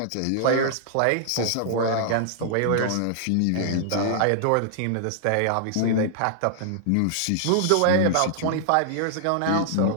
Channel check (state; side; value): different; both; correlation -0.01